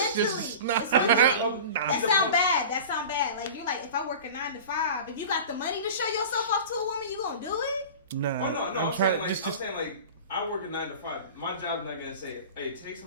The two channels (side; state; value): both; inverted; correlation -0.35